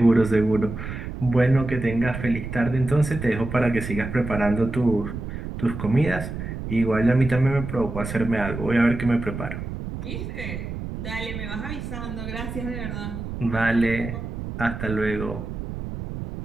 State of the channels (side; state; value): right; noise; rumble, 7 dB below the sound